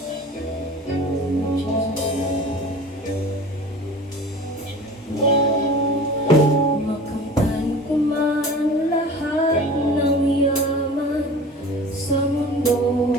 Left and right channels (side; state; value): both; normal; correlation 0.39